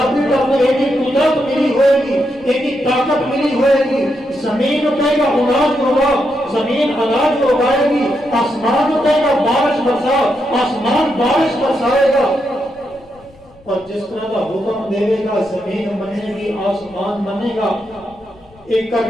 کی طرف ایک ہی قدرت ملی ہوئے گی، ایک ہی طاقت ملی ہوئے گی، زمین کہے گا اناج ہوگا، زمین اناج اگائے گی، آسمان کہے گا بارش برسا، آسمان بارش برسائے گا، اور جس طرح کا حکم دے گا زمین منے گی، آسمان منے گا، ایک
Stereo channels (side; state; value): left; noise; rumble, 27 dB below the sound